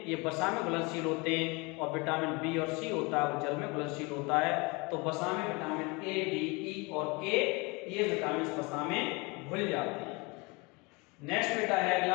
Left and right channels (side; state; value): right; quieter; 27.4 dB